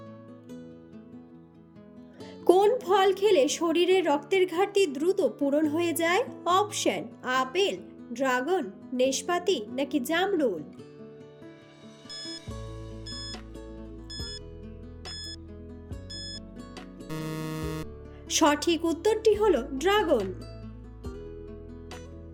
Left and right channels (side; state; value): both; identical; correlation 1.00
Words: কোন ফল খেলে শরীরের রক্তের ঘাটতি দ্রুত পূরণ হয়ে যায়? অপশন: আপেল, ড্রাগন, নেশপাতি নাকি জামরুল। সঠিক উত্তরটি হলো ড্রাগন।